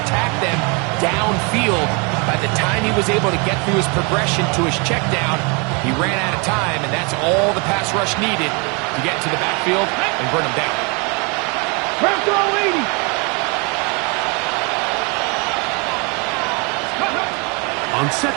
attack them downfield. By the time he was able to get through his progression to his check down, he ran out of time, and that's all the pass rush needed to get to the backfield and burn him down. Press all 80. On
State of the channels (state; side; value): quieter; left; 31.9 dB